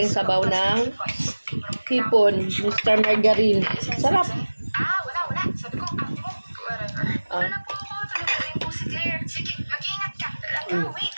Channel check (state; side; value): inverted; both; correlation -1.00